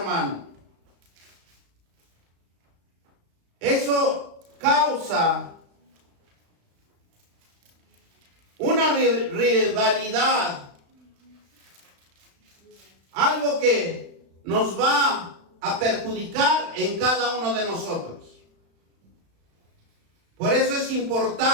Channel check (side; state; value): left; late; 35 ms